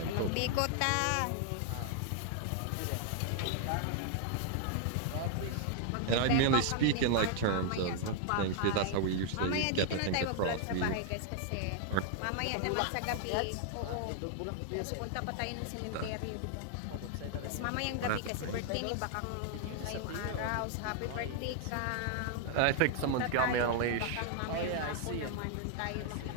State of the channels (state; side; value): different; both; correlation 0.00